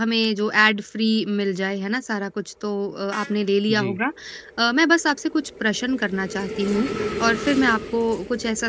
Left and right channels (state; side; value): identical; both; correlation 1.00